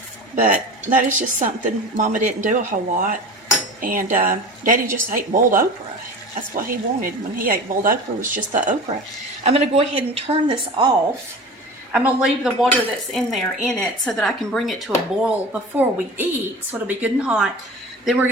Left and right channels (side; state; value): both; normal; correlation 0.35